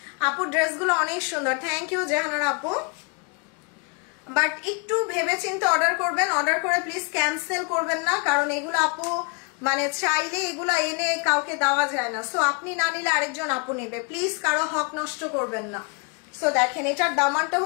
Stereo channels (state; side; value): quieter; right; 34.3 dB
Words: আপু ড্রেসগুলো অনেক সুন্দর, থ্যাংক ইউ জাহানারা আপু। বাট একটু ভেবে চিন্তে অর্ডার করবেন, অর্ডার করে প্লিজ ক্যান্সেল করবেন না, কারণ এগুলো আপু মানে চাইলে এগুলো এনে কাউকে দেওয়া যায় না। সো আপনি না নিলে আরেকজন আপু নেবে, প্লিজ কারো হক নষ্ট করবেন না। সো দেখেন এটার দামানটা